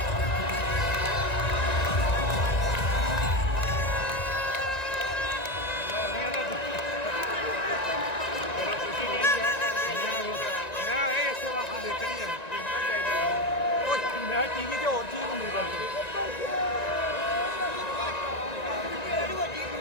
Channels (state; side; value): late; right; 1.9 ms